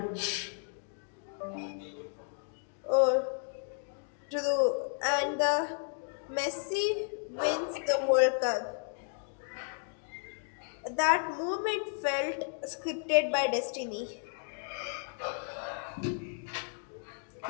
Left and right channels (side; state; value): right; silent; 56 dB below the other